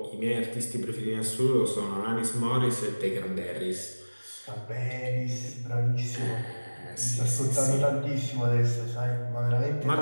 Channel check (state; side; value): inverted; both; correlation -1.00